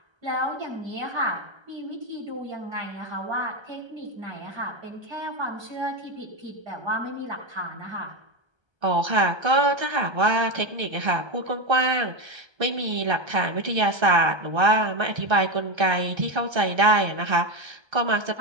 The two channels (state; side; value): late; left; 1.3 ms